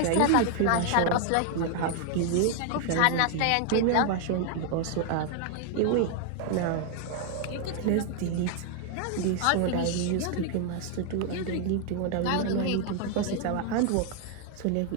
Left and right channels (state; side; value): different; both; correlation 0.00